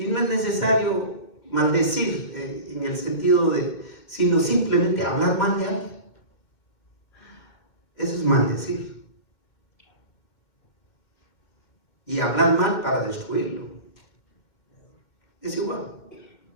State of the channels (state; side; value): late; right; 2.1 ms